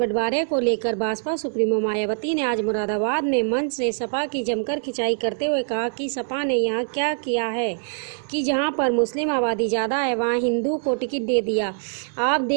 को लेकर भाजपा सुप्रीमो मायावती ने आज मुरादाबाद में मंच से सपा की जमकर खिंचाई करते हुए कहा कि सपा ने यहाँ क्या किया है कि जहाँ पर मुस्लिम आबादी ज़्यादा है वहाँ हिंदू को टिकट दे दिया। आप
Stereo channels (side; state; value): left; silent; 63 dB below the other